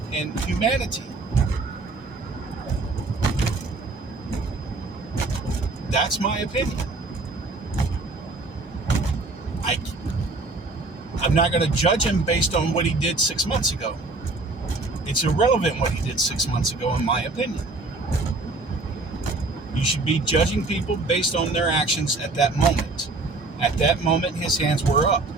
humanity. That's my opinion. I'm not going to judge him based on what he did 6 months ago. It's irrelevant what he did 6 months ago, in my opinion. You should be judging people based on their actions at that moment. At that moment, his hands were up.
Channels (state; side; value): quieter; left; 3.3 dB